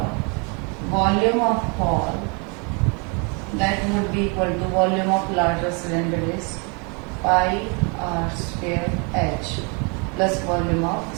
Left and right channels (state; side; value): quieter; left; 33.4 dB